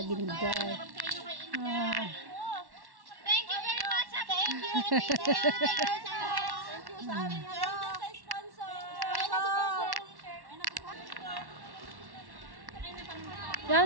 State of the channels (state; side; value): late; left; 1.1 ms